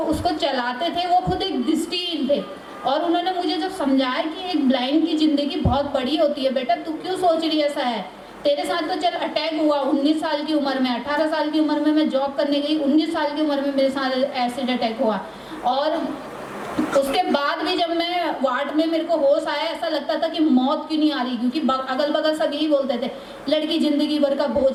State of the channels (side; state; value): both; identical; correlation 1.00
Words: चलाते थे वो खुद एक दृष्टिहीन थे, और उन्होंने मुझे जब समझाया कि एक ब्लाइंड की ज़िंदगी बहुत बड़ी होती है बेटा, तू क्यों सोच रही ऐसा है, तेरे साथ तो चल अटैक हुआ 19 साल की उम्र में, 18 साल की उम्र में मैं जॉब करने गई, 19 साल की उम्र में मेरे साथ एसिड अटैक हुआ। और उसके बाद भी जब मैं वार्ड में मेरे को होश आया, ऐसा लगता था कि मौत क्यों नहीं आ रही, क्योंकि अगल बगल सब यही बोलते थे लड़की ज़िंदगी भर का